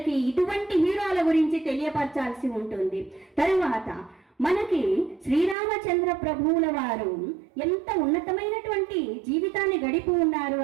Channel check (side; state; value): left; drops out; at 5.6 s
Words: ఇటువంటి హీరోల గురించి తెలియపరచాల్సి ఉంటుంది. తరువాత మనకి శ్రీరామచంద్ర ప్రభువుల వారు ఎంత ఉన్నతమైనటువంటి జీవితాన్ని గడిపి ఉన్నారు